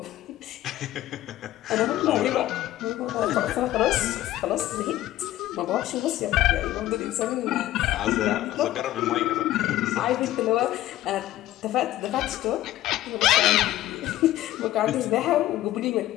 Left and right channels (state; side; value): quieter; right; 14.5 dB